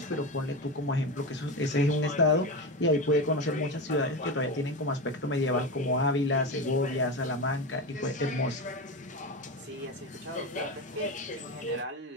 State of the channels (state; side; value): normal; both; correlation 0.20